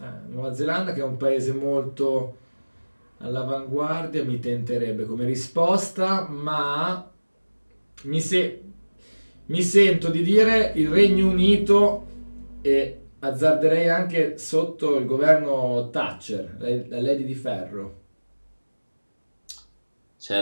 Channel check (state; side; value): inverted; both; correlation -1.00